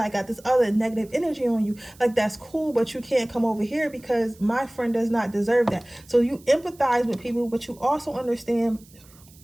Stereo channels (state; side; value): noise; right; hiss, 26 dB below the sound